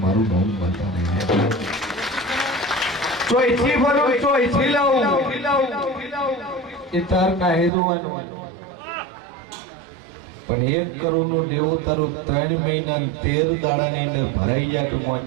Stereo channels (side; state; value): left; drops out; at 7.7 s